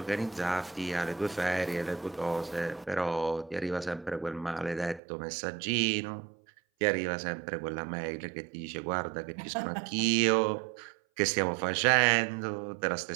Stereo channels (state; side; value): drops out; left; at 5.0 s